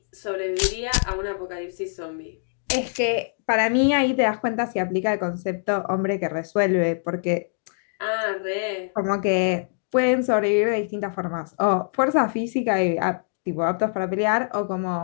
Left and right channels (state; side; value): silent; right; digital silence